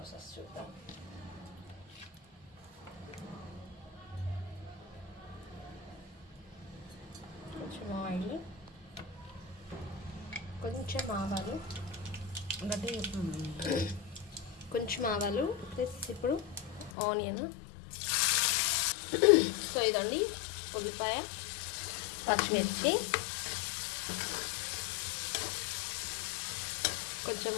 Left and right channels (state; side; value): drops out; right; at 16.9 s